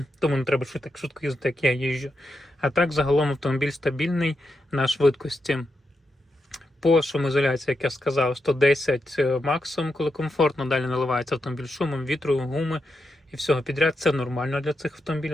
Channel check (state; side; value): normal; both; correlation 0.86